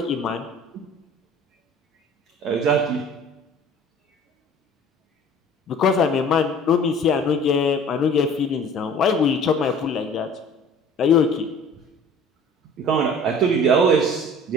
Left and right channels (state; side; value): normal; both; correlation 0.47